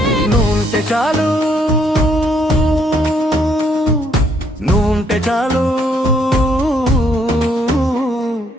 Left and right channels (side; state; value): both; normal; correlation 0.69